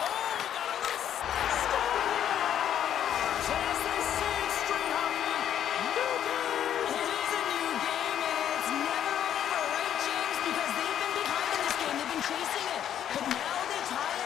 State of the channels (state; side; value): quieter; right; 10.1 dB